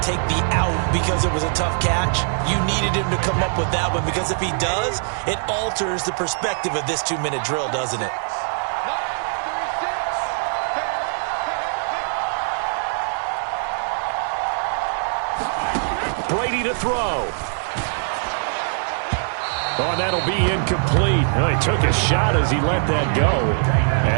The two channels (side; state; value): left; silent; digital silence